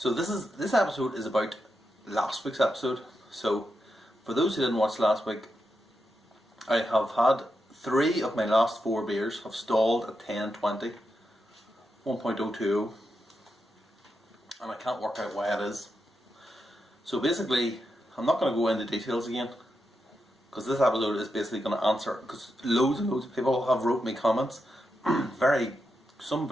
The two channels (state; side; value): normal; both; correlation 0.86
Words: So this episode is about last week's episode. So for those who didn't watch last week, I have had 3 of my last 4 beers have stalled at 10.20, 1.020, and I can't work out why it is. So basically, I'm not going to go into details again, because this episode is basically going to answer, because loads and loads of people have wrote me comments, some